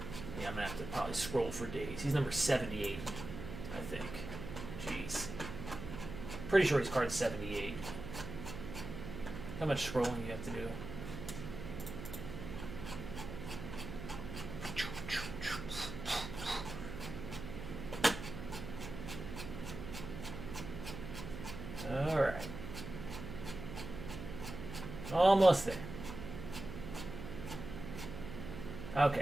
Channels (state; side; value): noise; right; hum, 8 dB below the sound